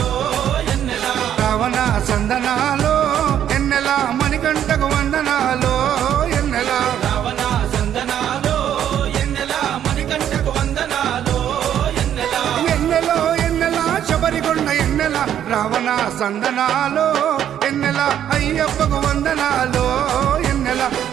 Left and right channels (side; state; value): left; quieter; 10.2 dB